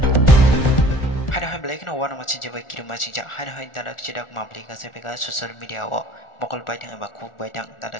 wana machin jeba kiru machin ja hai hai dadak sidak mabli ka sepeka social media wo mokol baitang ba khuk baitang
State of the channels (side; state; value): right; late; 1.4 ms